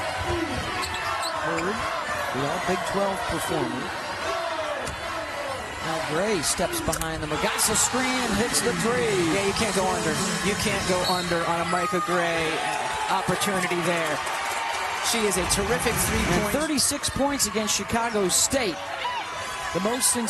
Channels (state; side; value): identical; both; correlation 1.00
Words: Hurd, the all-Big 12 performer. Now Gray steps behind the Magassa screen and hits the 3. Yeah, you can't go under. You can't go under on a Micah Gray opportunity there. She is a terrific 3-point. 36 points against Chicago State. The most